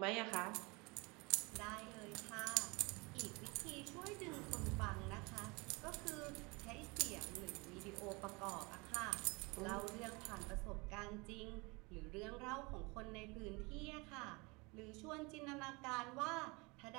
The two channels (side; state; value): left; quieter; 27.0 dB